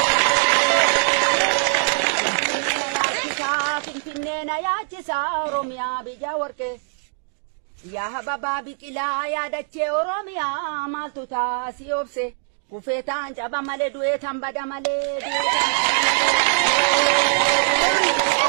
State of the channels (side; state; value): left; silent; digital silence